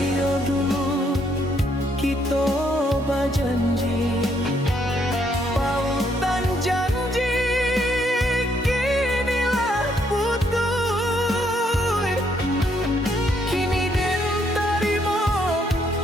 dulu kita berjanji pautan janji kinilah putus kini den tarimo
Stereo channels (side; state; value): both; normal; correlation 0.71